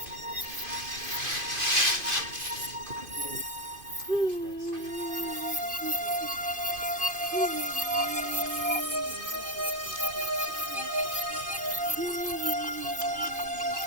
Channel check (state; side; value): late; left; 2.5 ms